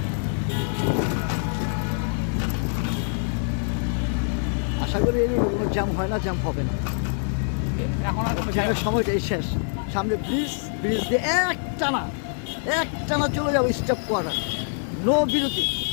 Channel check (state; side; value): silent; right; 61 dB below the other